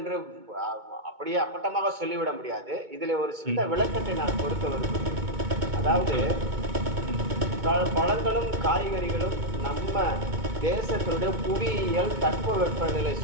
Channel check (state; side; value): late; left; 2.2 ms